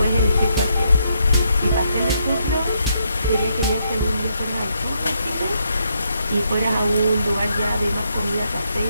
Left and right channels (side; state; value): both; inverted; correlation -0.77